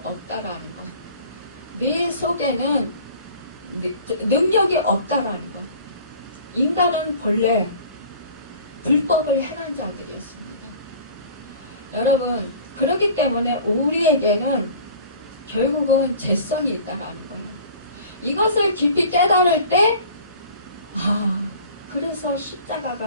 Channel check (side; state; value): both; inverted; correlation -0.45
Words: 것. 네 속에는 능력이 없다라는 것. 인간은 본래 불법을 행한 자들이었습니다. 여러분 그렇기 때문에 우리에게는 결국은 죄성이 있다라는 거예요. 이것을 깊이 깨달을 때 그래서